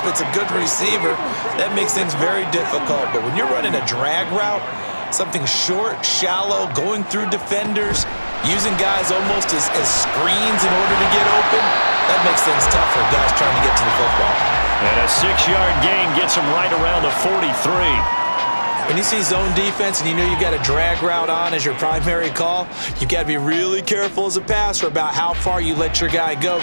it's a good receiver. That makes things very difficult. But when you're running a drag route, something short, shallow, going through defenders, using guys almost as screens in order to get open, that makes things tough for guys trying to get to the football. And a 6-yard gain gets him right around the 43. When you see zone defense and you know you've got a drag route on as your primary call, you've got to be really careful as a passer about how far you let your guy go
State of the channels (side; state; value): both; inverted; correlation -1.00